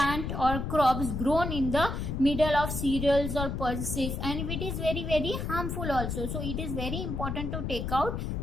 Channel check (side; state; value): left; noise; rumble, 3 dB below the sound